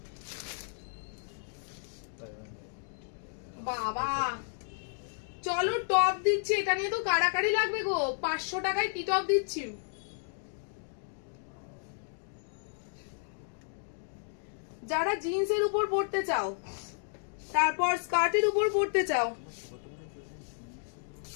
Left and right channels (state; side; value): silent; right; digital silence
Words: বাবা চলো টপ দিচ্ছি, এটা নিয়ে তো কাড়াকাড়ি লাগবে গো। 500 টাকায় কি টপ দিচ্ছি? যারা জিন্সের উপর পড়তে চাও, তারপর স্কার্টের উপর পড়তে চাও।